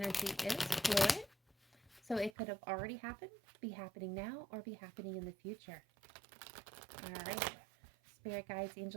is fluid, so it could have already happened, be happening now, or be happening in the future. All right. Spirit guides,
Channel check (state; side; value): drops out; left; at 2.3 s